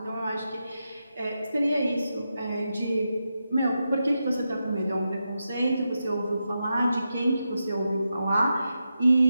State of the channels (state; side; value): inverted; both; correlation -0.88